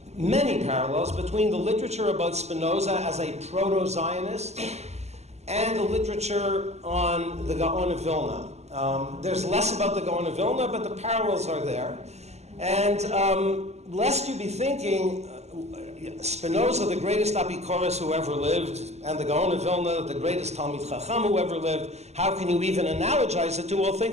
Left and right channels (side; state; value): left; late; 0.32 ms